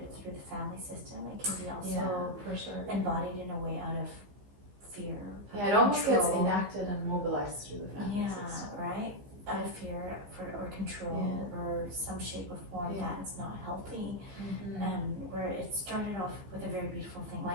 through the family system, it can be also for sure. embodied in a way out of fear. Yeah, it almost gets enacted and mobilized through the family system. Yeah, right? Out of fear or control or some shape or form that's not healthy. Where it started off with a very beautiful thing.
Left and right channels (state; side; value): late; left; 15 ms